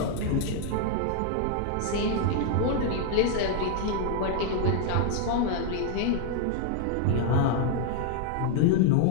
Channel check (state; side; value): different; both; correlation 0.00